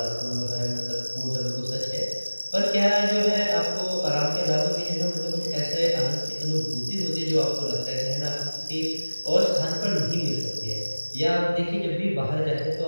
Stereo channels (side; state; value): both; inverted; correlation -1.00